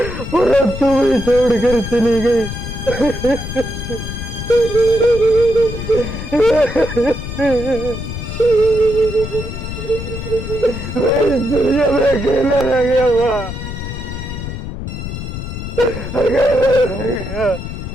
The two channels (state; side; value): noise; left; rumble, 7 dB below the sound